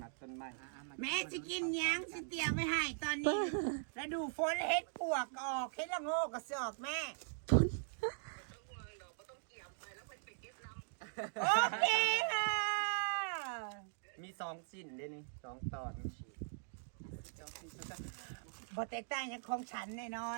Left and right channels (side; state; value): left; silent; digital silence